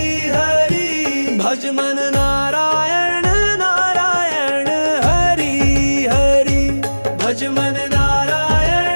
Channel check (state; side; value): inverted; both; correlation -1.00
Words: हरि भज मन नारायण नारायण हरि हरि भज मन